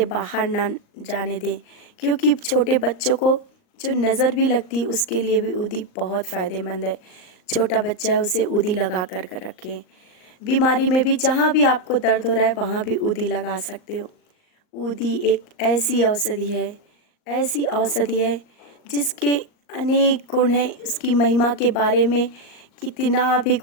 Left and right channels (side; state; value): right; late; 39 ms